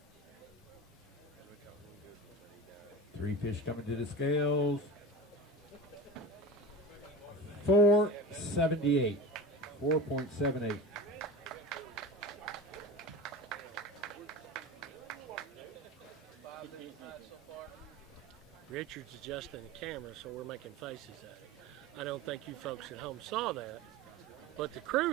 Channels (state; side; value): normal; both; correlation 0.30